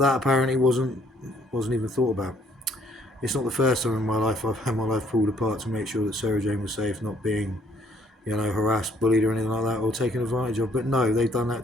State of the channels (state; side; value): normal; both; correlation 0.64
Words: apparently wasn't even thought about. It's not the first time in my life I've had my life pulled apart to make sure that Sarah Jane was safe, not being, harassed, bullied or anything like that, or taken advantage of. But no, they've done that